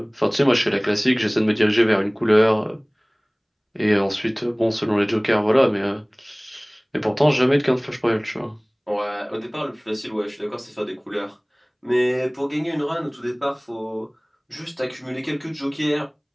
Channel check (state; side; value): identical; both; correlation 1.00